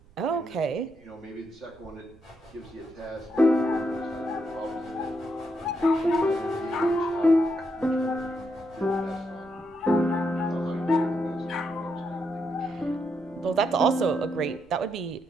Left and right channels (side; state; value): right; noise; rumble, 28 dB below the sound